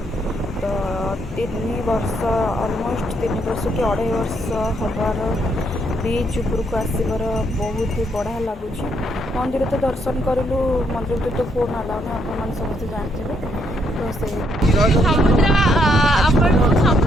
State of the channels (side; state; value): both; normal; correlation 0.73